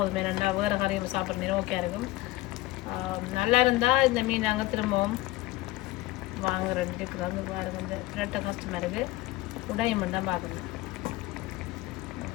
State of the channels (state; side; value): quieter; right; 18.5 dB